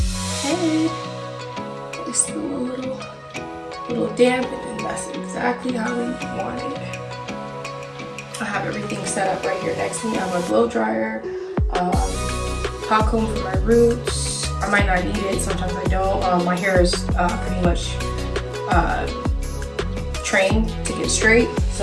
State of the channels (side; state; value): both; identical; correlation 1.00